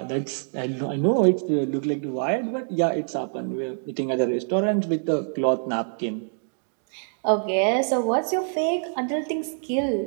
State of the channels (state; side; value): silent; left; digital silence